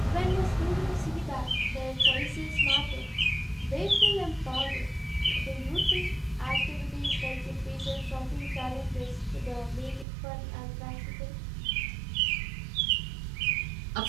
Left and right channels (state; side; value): drops out; left; at 10.1 s